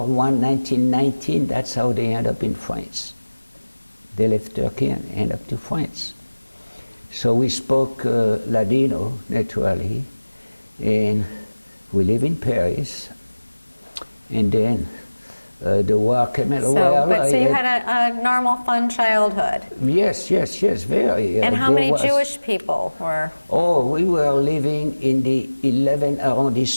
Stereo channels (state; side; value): inverted; both; correlation -1.00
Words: I, 1919, that's how they ended up in France. They left Turkey and ended up to France. So we spoke Ladino, naturally, and we live in Paris. And then the war came in. So you had a normal, fun childhood. Yes, very. And how many Jewish people were? Oh, we were living in the 11th